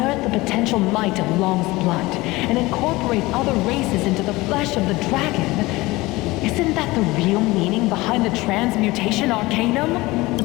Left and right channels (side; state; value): right; quieter; 20.8 dB